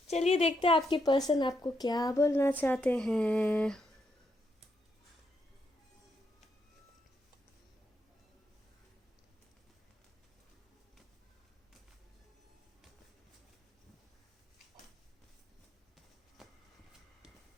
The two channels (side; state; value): both; normal; correlation 0.79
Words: चलिए देखते हैं आपके पर्सन आपको क्या बोलना चाहते हैं।